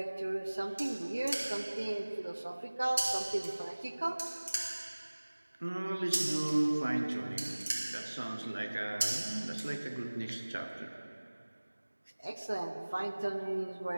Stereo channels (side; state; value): both; inverted; correlation -1.00